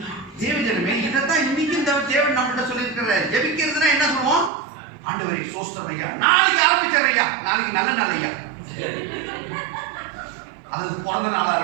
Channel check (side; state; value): left; drops out; at 4.5 s